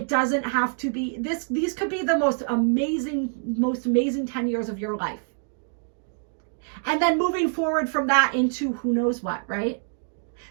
doesn't have to be this. These could be the most amazing 10 years of your life. And then moving forward from that into who knows what, right?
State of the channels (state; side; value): silent; left; 60 dB below the other